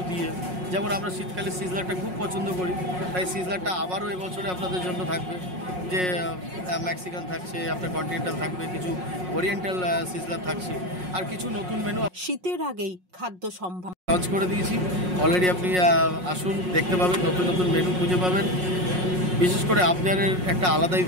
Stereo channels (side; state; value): left; late; 5.5 ms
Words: দিয়ে। যেমন আমরা শীতকালে সিজলারটা খুব পছন্দ করি, তাই সিজলারটা আবারও এবছরে আপনাদের জন্য থাকবে। যে মেক্সিকান থাকছে, আপনার কন্টিনেন্টাল থাকবে, কিছু ওরিয়েন্টাল সিজলার থাকছে, আর কিছু নতুন মেনু শীতের আগেই খাদ্য সম্ভার লঞ্চ করে দিয়েছি অলরেডি। আপনি আসুন, দেখতে পাবেন, নতুন নতুন মেনু খুঁজে পাবেন। বিশেষ করে আপনাদের একটা আলাদাই